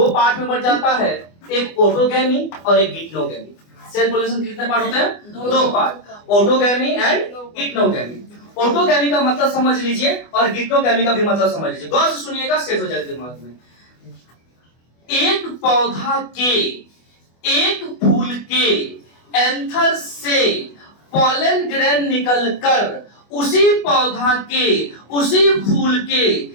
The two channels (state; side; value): late; right; 24 ms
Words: पार्ट में बढ़ जाता है, एक ऑटोगैमी और एक गिटनोगैमी। सेल्फ पॉलिनेशन कितने पार्ट होते हैं? दो पार्ट, ऑटोगैमी एंड गिटनोगैमी। ऑटोगैमी का मतलब समझ लीजिए और गिटनोगैमी का भी मतलब समझ लीजिए। गौर से सुनिएगा, सेट हो जाएगा दिमाग में। एक पौधा के, एक फूल के एंथर से पॉलन ग्रेन निकलकर उसी पौधा के, उसी फूल के